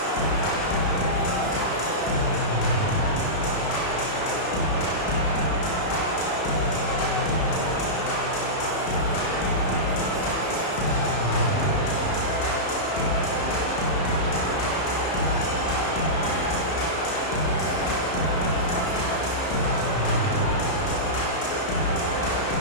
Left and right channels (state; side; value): late; right; 33 ms